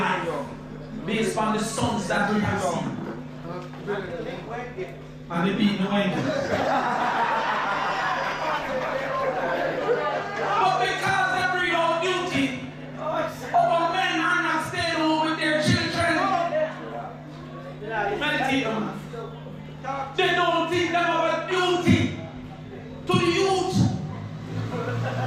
based on the sons that we have seen. And they beat the wind. But because they bring out duty, our men are not staying home with their children. Meditate on them. They don't think them about duty to the youth.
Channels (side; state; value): both; identical; correlation 1.00